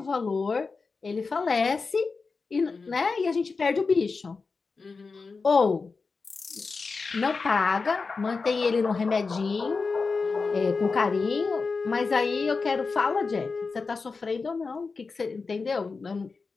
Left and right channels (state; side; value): quieter; right; 4.4 dB